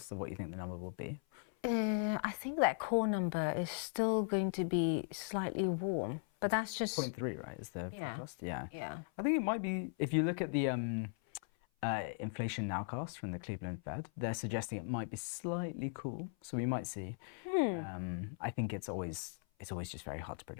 of what you think the number will be? I think that core number is still going to be slightly warm. But that's just 0.3, right? Is the forecast? Yeah. Yeah. I think it might be, if you look at the inflation nowcast from the Cleveland Fed, they're suggesting it might be slightly cool. So we might see. I think it's always just very hard to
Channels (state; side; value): silent; right; 52 dB below the other